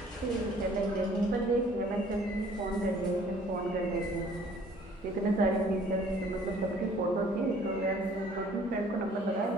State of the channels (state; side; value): normal; both; correlation 0.56